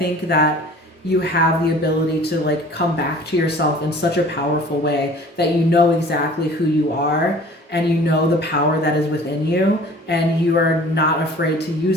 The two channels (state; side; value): normal; both; correlation 0.47